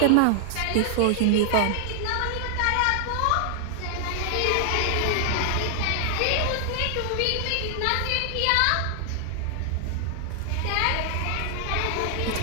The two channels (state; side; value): different; both; correlation 0.00